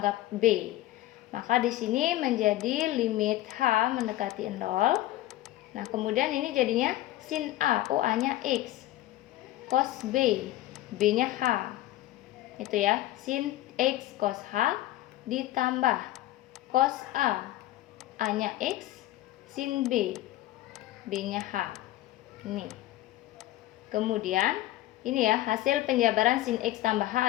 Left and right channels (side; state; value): right; quieter; 15.5 dB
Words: B. Maka di sini menjadi limit H mendekati 0. Nah, kemudian ini jadinya sin A, A-nya X, cos B, B-nya H. Itu ya, sin X cos H ditambah cos A, A-nya X, sin B, B-nya H. Ini. Kemudian ini ya, hasil penjabaran sin X tambah